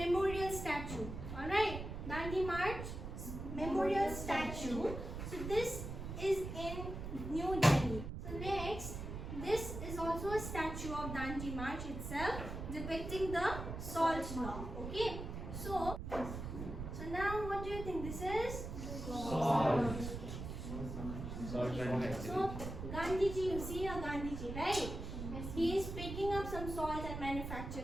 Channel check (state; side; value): noise; right; rumble, 7 dB below the sound